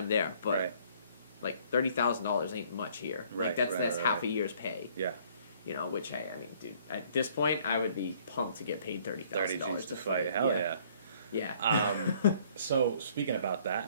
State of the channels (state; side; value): inverted; both; correlation -0.60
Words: there, but Right. like $30,000 ain't much here. Right, Like that's right. half a year's pay. Yeah. Which, hey, I mean, dude, at this point, I would be pumped to get paid $30,000 to fight. Hell yeah. Yeah. So speaking about